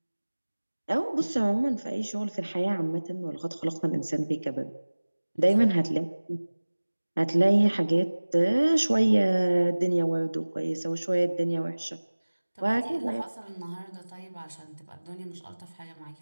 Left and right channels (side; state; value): both; inverted; correlation -1.00